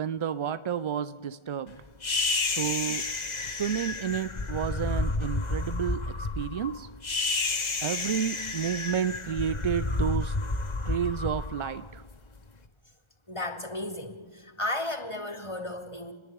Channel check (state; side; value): late; right; 1.3 ms